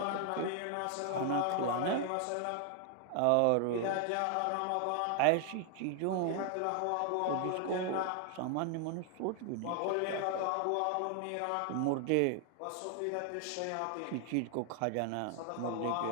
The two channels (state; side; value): different; both; correlation 0.00